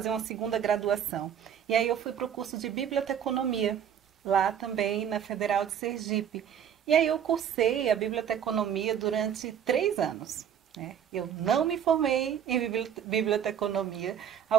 uma segunda graduação. E aí eu fui para o curso de biblioteconomia, lá também na Federal de Sergipe. E aí eu cursei a biblioteconomia durante 3 anos. Eu não me formei em biblioteconomia.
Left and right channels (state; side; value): quieter; left; 8.9 dB